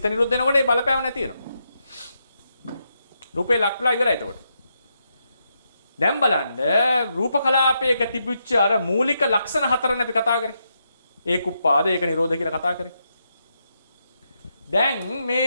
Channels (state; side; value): inverted; both; correlation -0.82